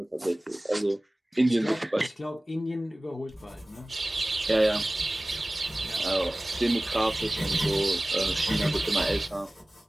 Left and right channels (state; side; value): normal; both; correlation 0.98